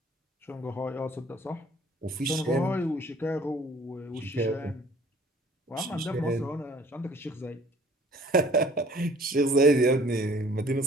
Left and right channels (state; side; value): normal; both; correlation 0.54